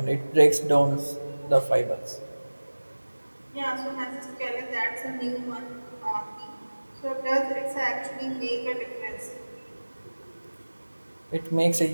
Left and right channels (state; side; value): inverted; both; correlation -1.00